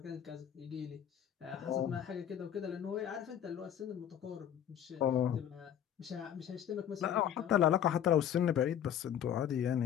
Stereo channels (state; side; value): quieter; right; 9.8 dB